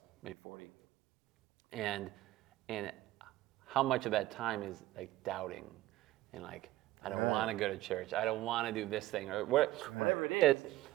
maybe 40. And how much of that time is like doubting and like, I don't want to go to church. I don't want to do this thing or whatever it is.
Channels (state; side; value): quieter; left; 16.2 dB